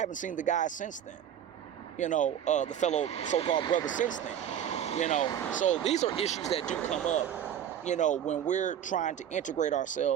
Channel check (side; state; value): left; quieter; 9.7 dB